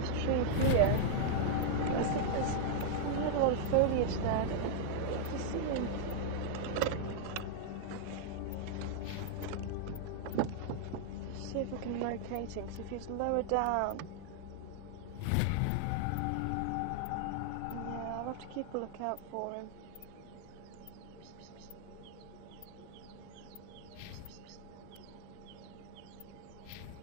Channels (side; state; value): both; different; correlation -0.01